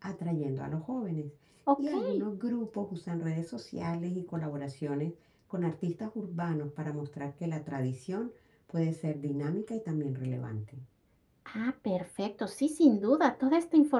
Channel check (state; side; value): identical; both; correlation 1.00